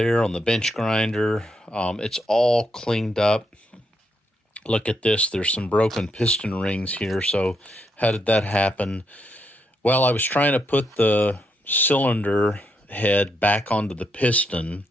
on the bench grinder. It's all cleaned up. Look at this. There's some broken piston rings here. So how did that happen? Well, I was trying to put the cylinder head back onto the piston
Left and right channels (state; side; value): normal; both; correlation 0.79